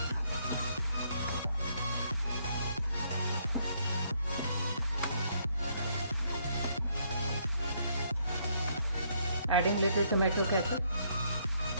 Adding little tomato ketchup.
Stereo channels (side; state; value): both; inverted; correlation -0.70